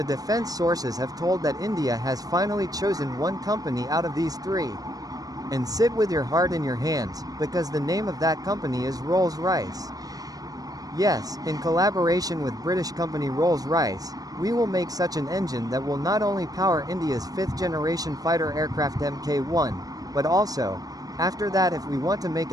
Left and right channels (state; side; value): late; left; 0.18 ms